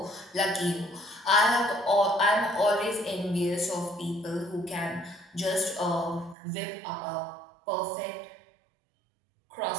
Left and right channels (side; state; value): left; drops out; at 6.4 s